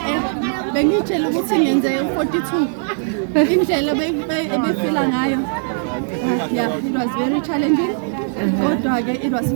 bengitshela ukuthi ngenze 42. Indlela ebefila ngayo. Yeah, it was very challenging. Kodwa-ke it was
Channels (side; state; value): left; silent; digital silence